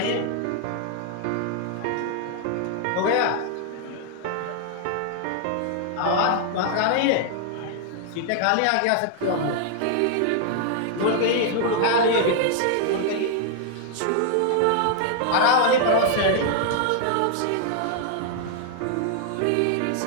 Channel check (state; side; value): different; both; correlation 0.00